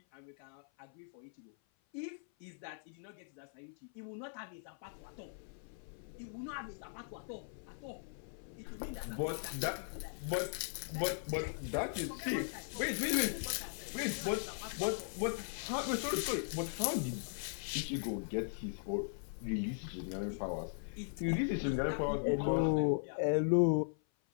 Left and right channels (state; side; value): silent; right; 52 dB below the other